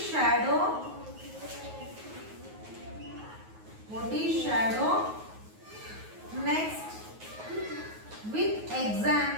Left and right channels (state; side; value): late; left; 9.4 ms